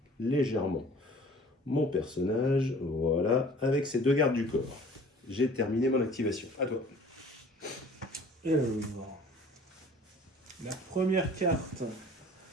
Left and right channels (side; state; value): both; normal; correlation 0.49